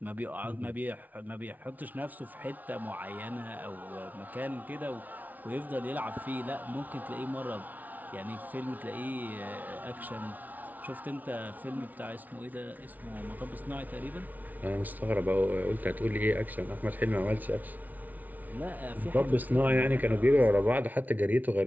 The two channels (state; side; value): late; left; 0.078 ms